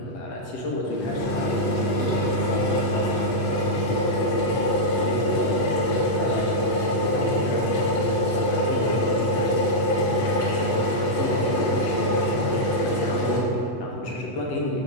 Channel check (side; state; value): right; late; 8.2 ms